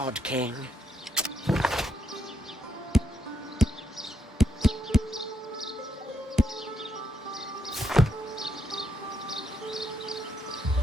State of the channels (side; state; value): both; normal; correlation 0.79